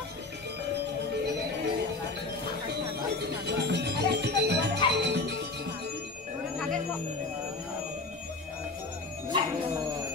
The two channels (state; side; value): quieter; right; 3.4 dB